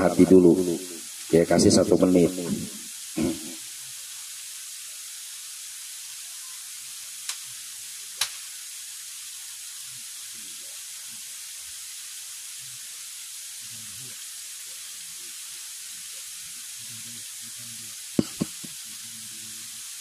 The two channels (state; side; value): identical; both; correlation 1.00